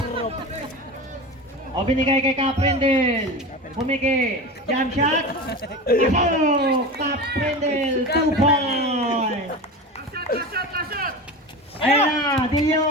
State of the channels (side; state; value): both; normal; correlation 0.28